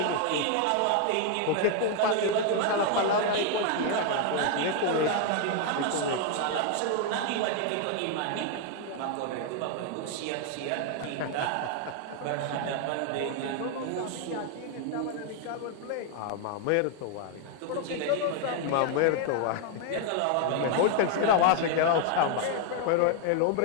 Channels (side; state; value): both; different; correlation 0.00